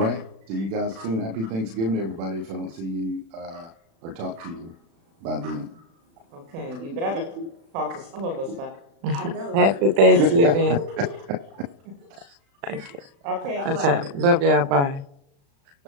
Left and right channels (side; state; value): left; late; 36 ms